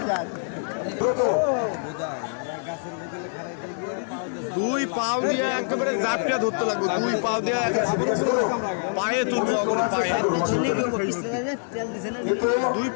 দ্রুত দুই পাও দিয়ে একেবারে জাপটা ধরতে লাগবে, দুই পাও দিয়ে পায়ে তুলবো, পায়ে দুই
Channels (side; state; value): right; silent; 61 dB below the other